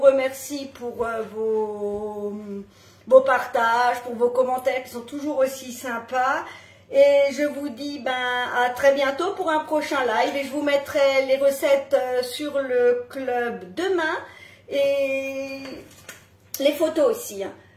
pour vos partages, pour vos commentaires qui sont toujours aussi sympas. Et je vous dis à très bientôt pour un prochain live. Et je vous mettrai les recettes sur le club demain. Et les photos aussi. Hein.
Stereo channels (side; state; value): both; identical; correlation 1.00